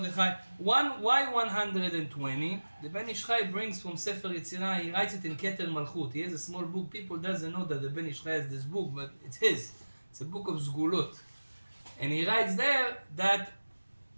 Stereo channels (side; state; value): both; inverted; correlation -1.00